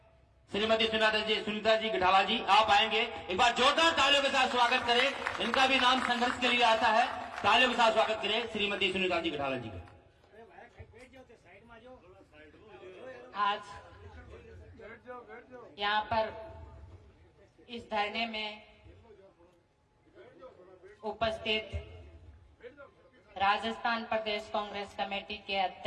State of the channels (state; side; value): identical; both; correlation 1.00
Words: श्रीमती सुनीता जी गठाला जी आप आएंगे एक बार जोरदार तालियों के साथ स्वागत करें इनका भी नाम संघर्ष के लिए आता है तालियों के साथ स्वागत करें श्रीमती सुनीता जी गठाला जी का। आज यहाँ पर इस धरने में उपस्थित राजस्थान प्रदेश कांग्रेस कमेटी के